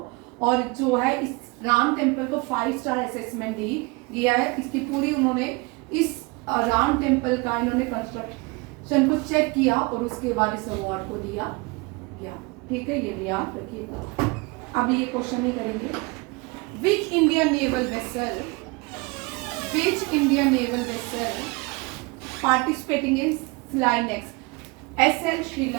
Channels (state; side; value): quieter; left; 26.9 dB